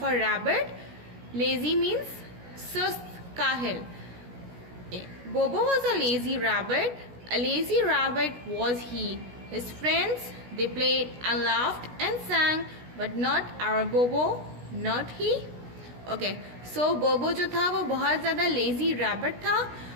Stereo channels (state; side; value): late; left; 16 ms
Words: a rabbit. Lazy means sust, kahil. Bobo was a lazy rabbit. A lazy rabbit was he. His friends, they played and laughed and sang, but not our Bobo, not he. Okay, so Bobo जो था वो बहुत ज़्यादा lazy rabbit था.